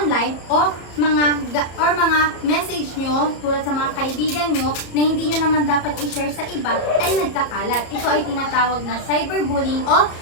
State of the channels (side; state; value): right; late; 34 ms